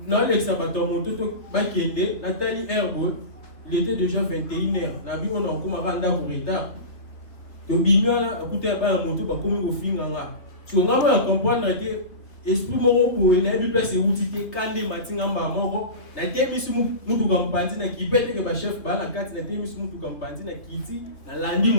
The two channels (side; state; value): right; late; 3.3 ms